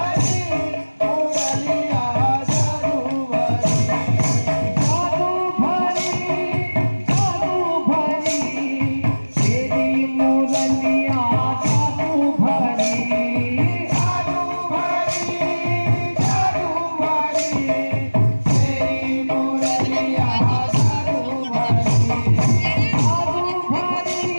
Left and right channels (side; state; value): both; inverted; correlation -1.00